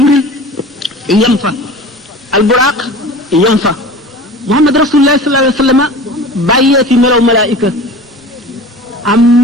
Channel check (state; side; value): normal; both; correlation 0.38